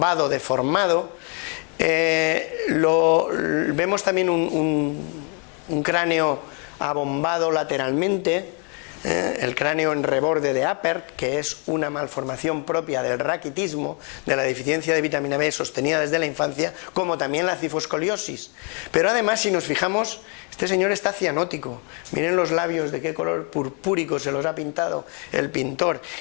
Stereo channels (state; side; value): quieter; right; 36.7 dB